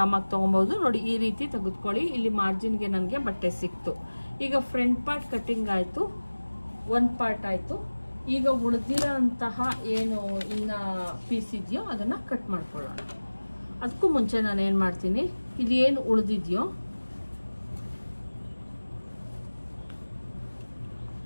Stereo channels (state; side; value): inverted; both; correlation -1.00